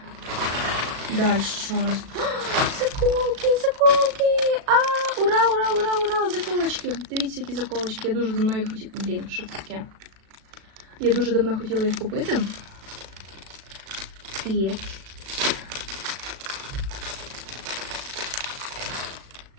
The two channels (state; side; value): late; left; 37 ms